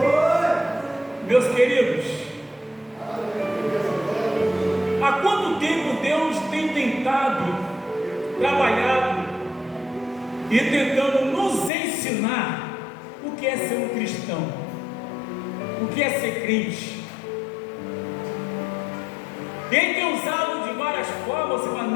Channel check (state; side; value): drops out; right; at 11.7 s